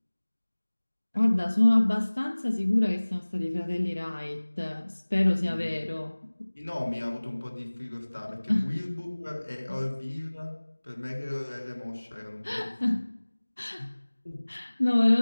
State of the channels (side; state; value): both; inverted; correlation -1.00